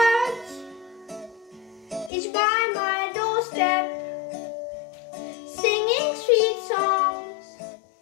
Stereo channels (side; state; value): right; drops out; at 2.1 s